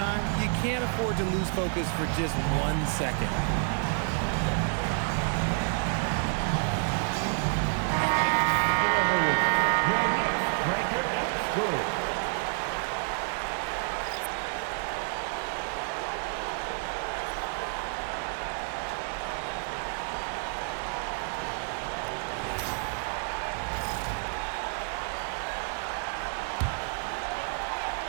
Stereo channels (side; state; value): left; silent; 58 dB below the other